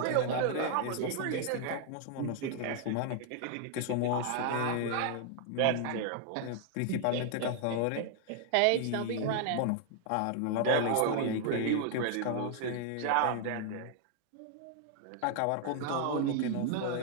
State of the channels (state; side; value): different; both; correlation 0.00